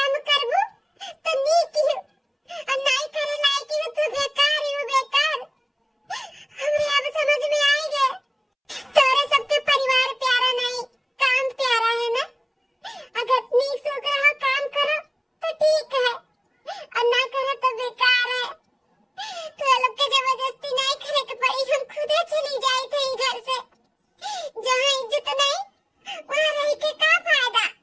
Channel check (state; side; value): identical; both; correlation 1.00